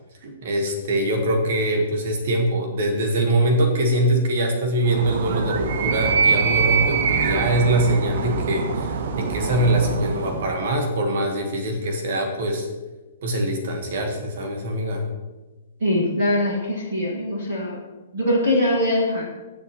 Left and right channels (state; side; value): inverted; both; correlation -0.45